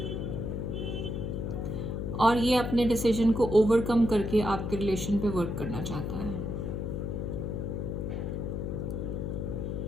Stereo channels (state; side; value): noise; left; hum, 3 dB below the sound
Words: और ये अपने डिसीजन को ओवरकम करके आपके रिलेशन पे वर्क करना चाहता है.